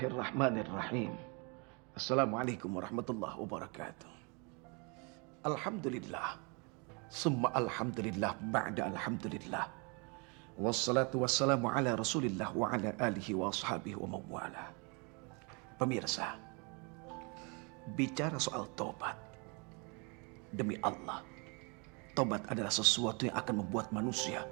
Assalamualaikum warahmatullahi wabarakatuh. Alhamdulillah. Summa alhamdulillah ba'da alhamdulillah. Wassalatu wassalamu ala rasulillah wa ala alihi wa ashabihi wa mawala. Pemirsa, bicara soal tobat. Demi Allah, tobat adalah sesuatu yang akan membuat manusia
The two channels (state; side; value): quieter; left; 32.2 dB